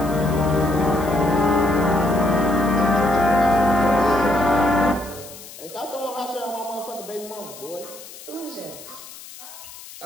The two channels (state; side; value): noise; left; hiss, 16 dB below the sound